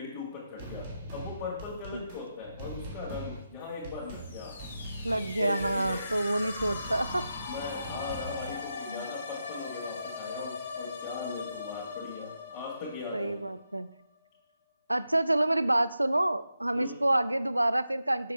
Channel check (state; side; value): inverted; both; correlation -0.86